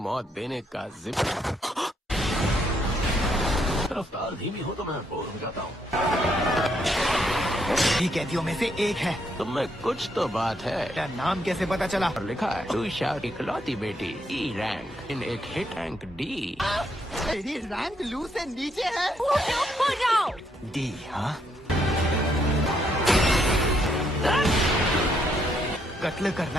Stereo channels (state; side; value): normal; both; correlation 0.74